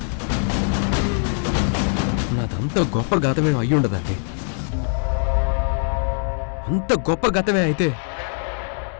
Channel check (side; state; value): right; silent; 64 dB below the other